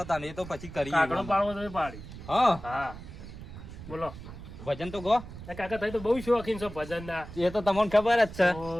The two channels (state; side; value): noise; right; rumble, 13 dB below the sound